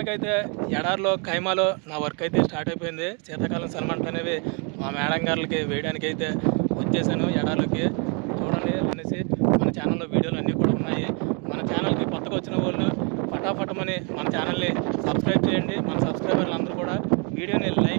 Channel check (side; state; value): left; quieter; 35.4 dB